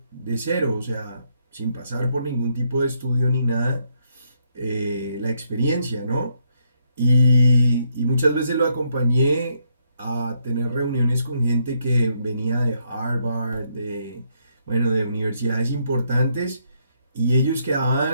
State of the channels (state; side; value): inverted; both; correlation -0.75